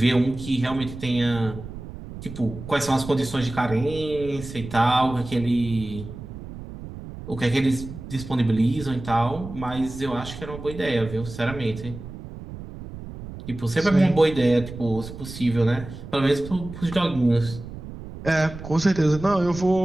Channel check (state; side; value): noise; right; rumble, 12 dB below the sound